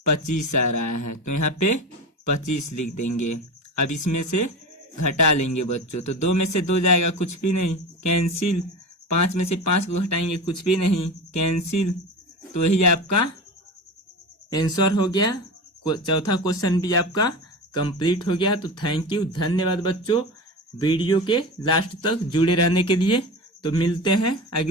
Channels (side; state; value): both; normal; correlation 0.27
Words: 25 आ रहा है, तो यहाँ पे 25 लिख देंगे। अब इसमें से घटा लेंगे बच्चों, तो 2 में से 2 जाएगा, कुछ भी नहीं, कैंसिल। 5 में से 5 को घटाएंगे, कुछ भी नहीं, कैंसिल। तो यही आपका आंसर हो गया। चौथा क्वेश्चन भी आपका कंप्लीट हो गया। तो थैंक यू, धन्यवाद बच्चों वीडियो के लास्ट तक जुड़े रहने के लिए। तो मिलते हैं